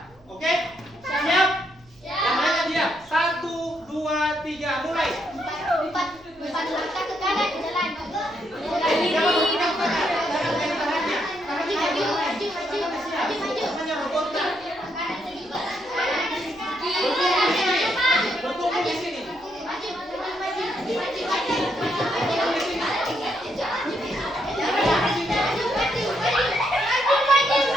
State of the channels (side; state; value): right; noise; hum, 29 dB below the sound